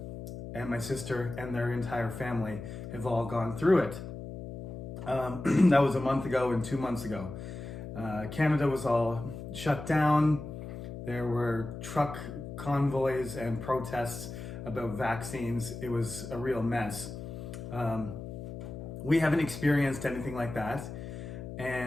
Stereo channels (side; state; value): left; noise; hum, 9 dB below the sound